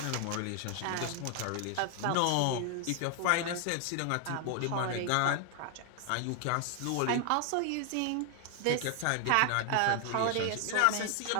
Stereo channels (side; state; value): both; different; correlation 0.00